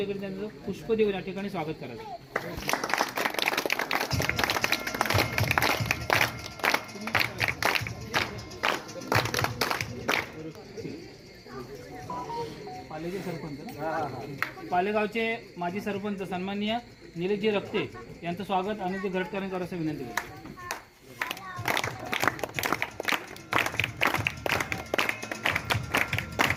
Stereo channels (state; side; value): identical; both; correlation 1.00